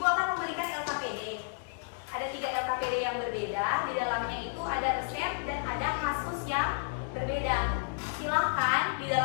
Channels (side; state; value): right; silent; digital silence